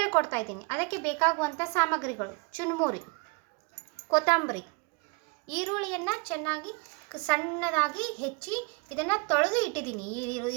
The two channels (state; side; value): quieter; left; 31.2 dB